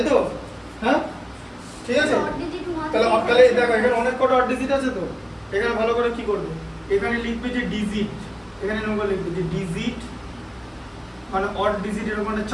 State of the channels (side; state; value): both; identical; correlation 1.00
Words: তো? হ্যাঁ, ঠিক আছে? তাহলে দেখো এখানে অনেক কটা অড ডিজিট আছে তো, এখানে ভালো করে কি করবে? এখানে লিখবে যে ডিজিট, এখানে এরকম লিখবে যে ডিজিট মানে অড ডিজিট, এরকম একটা